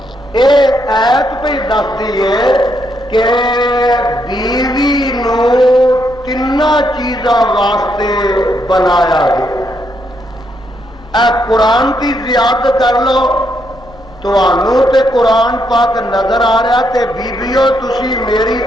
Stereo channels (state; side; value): normal; both; correlation 0.77